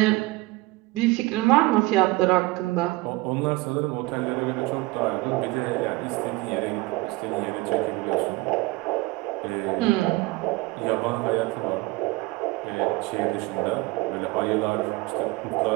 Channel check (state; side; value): quieter; left; 21.5 dB